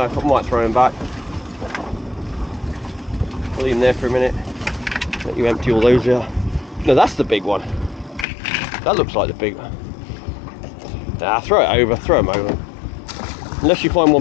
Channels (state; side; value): drops out; right; at 8.2 s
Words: I might throw him back. I'll leave him there for a minute. Let you empty all those out. No, that's the big one. That looks like the big one. Nah, throw it over, throw them over. Unless you find